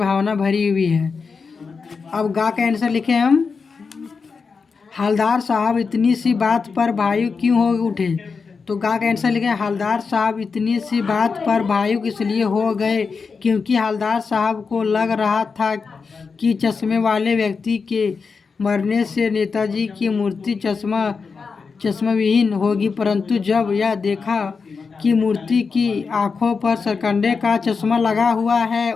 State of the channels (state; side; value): quieter; right; 5.1 dB